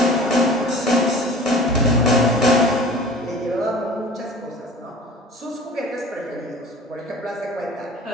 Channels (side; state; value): both; normal; correlation 0.43